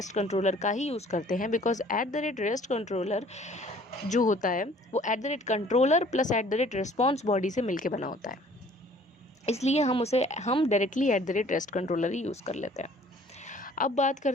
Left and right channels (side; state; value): both; normal; correlation 0.54